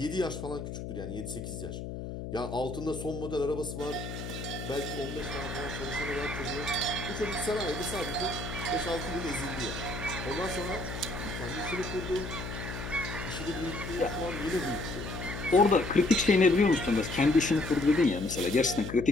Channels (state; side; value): noise; left; hum, 7 dB below the sound